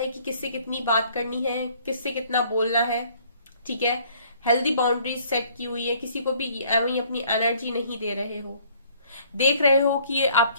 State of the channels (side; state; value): both; inverted; correlation -0.59